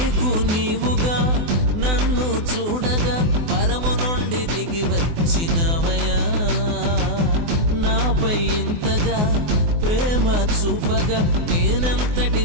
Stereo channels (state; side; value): late; left; 24 ms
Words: నీవుగా నన్ను చూడగా పరము నుండి దిగి వచ్చినవయా. నాపై ఇంతగా ప్రేమ చూపగా నేనంతటి